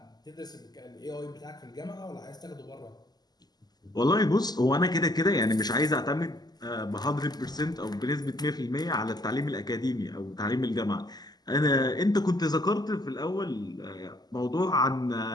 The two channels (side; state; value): right; late; 0.20 ms